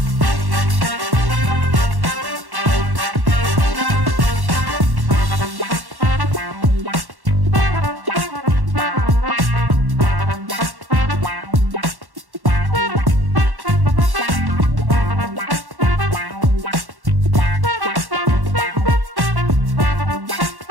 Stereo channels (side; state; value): left; late; 1.1 ms